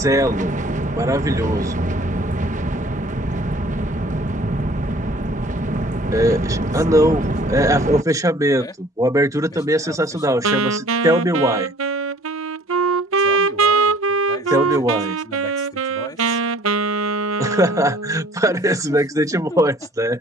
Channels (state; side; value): normal; both; correlation 0.53